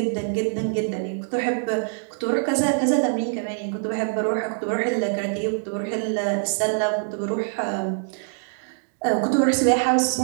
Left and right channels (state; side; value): silent; left; digital silence